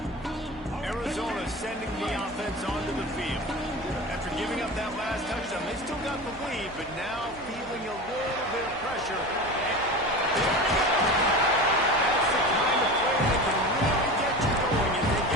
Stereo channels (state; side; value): noise; right; hum, 19 dB below the sound